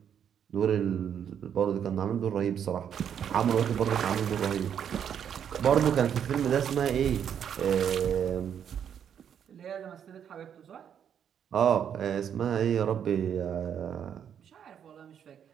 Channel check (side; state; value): left; quieter; 8.6 dB